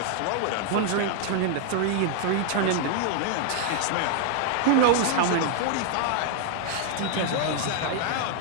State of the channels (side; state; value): both; different; correlation 0.00